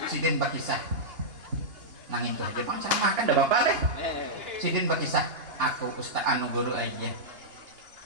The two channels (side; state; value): left; late; 2.9 ms